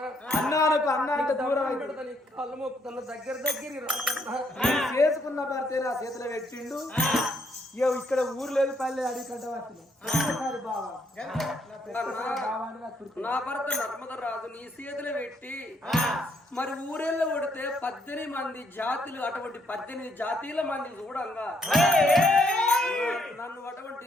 అన్నానికి అన్నానికి దూరం కళ్ళు మొక్కుతున్న దగ్గర చేసుకున్న భర్తే నా చేతిలో పెట్టిండు ఇక్కడ ఊరు లేదు పల్లె అడవి కంటే వచ్చిన ఒక్కసారి బాగా నా భర్త నర్మద రాజు నీ చేతులు పెట్టి మరి ఊరేళ్ళు కొడితే 18 మంది జాతులు అటువంటి 18 జాతీయుల మంది చూడంగా నన్ను అటువంటి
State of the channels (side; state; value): both; normal; correlation 0.72